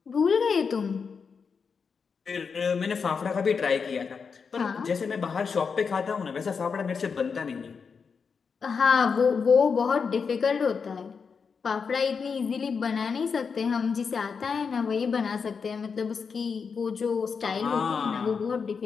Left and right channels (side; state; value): right; quieter; 5.7 dB